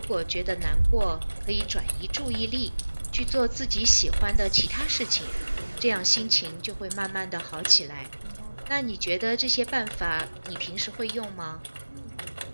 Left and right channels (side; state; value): both; inverted; correlation -1.00